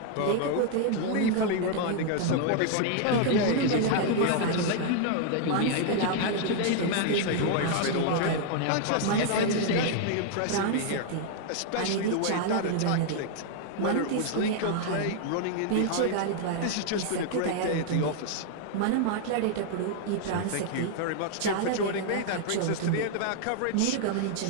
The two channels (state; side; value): different; both; correlation 0.00